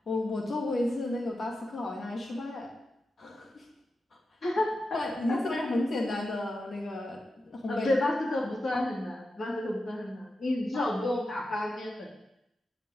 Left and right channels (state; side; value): normal; both; correlation 0.90